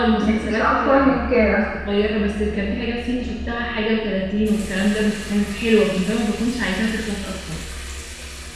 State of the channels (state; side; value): identical; both; correlation 1.00